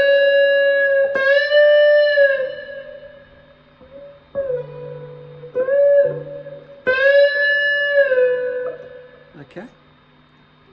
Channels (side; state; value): both; identical; correlation 1.00